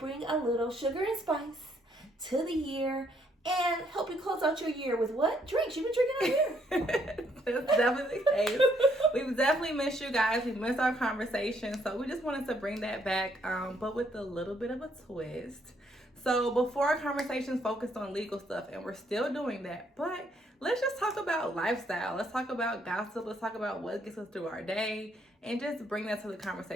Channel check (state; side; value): normal; both; correlation 0.70